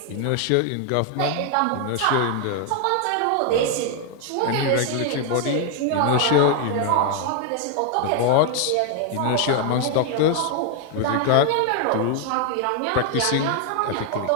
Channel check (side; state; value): both; different; correlation 0.00